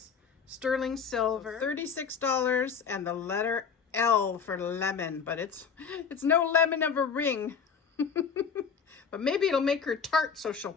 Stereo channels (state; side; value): quieter; right; 6.4 dB